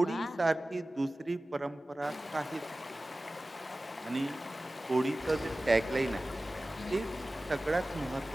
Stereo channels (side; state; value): both; normal; correlation 0.96